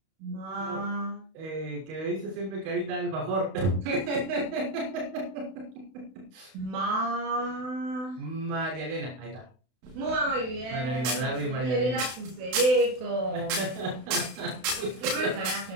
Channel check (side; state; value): left; late; 32 ms